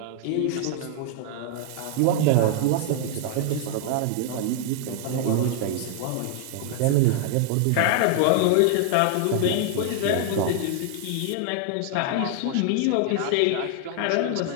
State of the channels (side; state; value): both; different; correlation 0.00